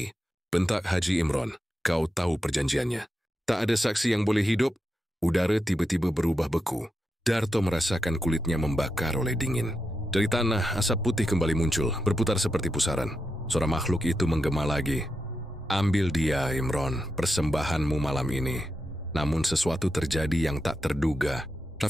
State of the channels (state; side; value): normal; both; correlation 0.87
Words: Bentak Haji Imron. Kau tahu perjanjiannya. Tak ada saksi yang boleh hidup. Udara tiba-tiba berubah beku. Darto merasakan kulitnya membakar oleh dingin. Dari tanah, asap putih kembali muncul, berputar seperti pusaran. Suara makhluk itu menggema lagi. Ambil dia, Imron, persembahanmu malam ini. Namun sesuatu terjadi yang tak terduga.